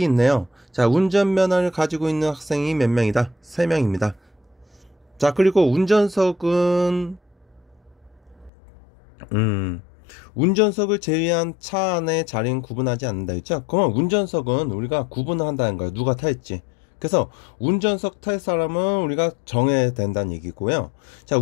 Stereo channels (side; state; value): right; drops out; at 8.5 s